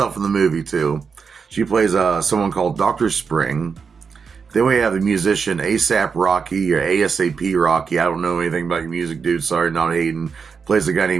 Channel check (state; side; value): quieter; left; 5.7 dB